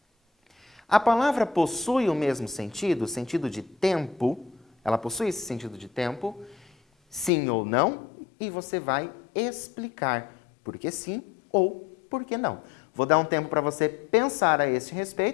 a palavra possui o mesmo sentido, o sentido de tempo. Ela possui esse sentido de tempo, sim ou não, e você vai explicar por que sim ou por que não. Vou dar um tempo para você pensar a esse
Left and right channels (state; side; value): drops out; right; at 7.3 s